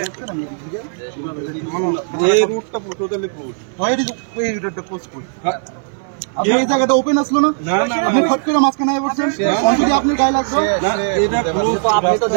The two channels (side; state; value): left; silent; 62 dB below the other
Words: এই রুটটা টোটালি ক্লোজ হয় এই রুটটা ক্লোজ করি আপনি এই জায়গাটা ওপেন আসলো না আপনি ফট করে মাঝখানে আই বলছেন অলরেডি আপনি গায়ে লাগলো না এটা ক্লোজ তো আপনি তো